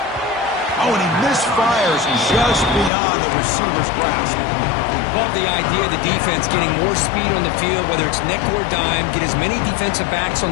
Oh, and he misfires just beyond the receiver's grasp. Love the idea of the defense getting more speed on the field, whether it's nickel or dime, get as many defensive backs on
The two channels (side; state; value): right; drops out; at 2.9 s